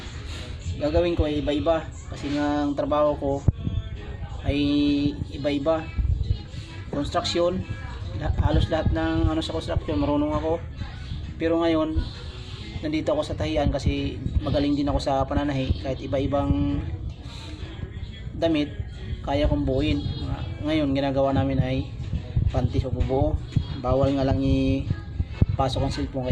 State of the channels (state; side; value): identical; both; correlation 1.00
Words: gagawin ko ay iba-iba, kasi nga ang trabaho ko ay iba-iba. Construction, halos lahat ng sa construction marunong ako. Pero ngayon nandito ako sa tahian kasi magaling din ako sa pananahi. Kahit iba-ibang damit kaya kong buuin. Ngayon ginagawa namin ay panty o bubuo. Bawal nga lang ipasok ang cellphone,